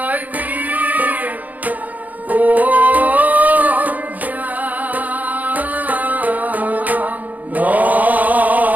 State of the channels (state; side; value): late; left; 0.079 ms